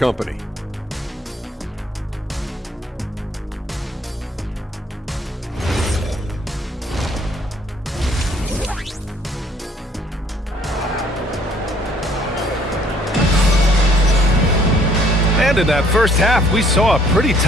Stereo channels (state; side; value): normal; both; correlation 0.61